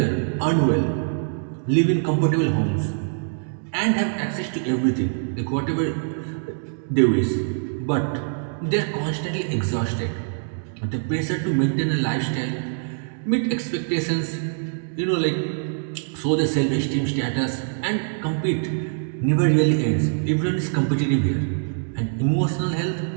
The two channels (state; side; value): silent; left; digital silence